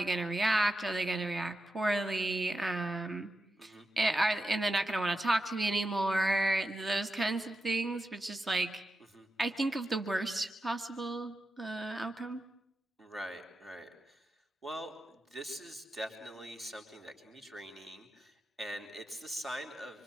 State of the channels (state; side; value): normal; both; correlation 0.89